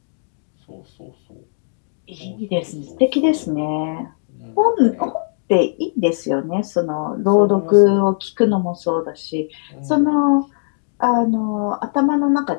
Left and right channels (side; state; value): right; silent; digital silence